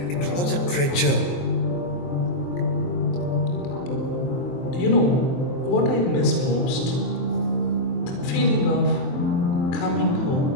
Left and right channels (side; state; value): right; late; 23 ms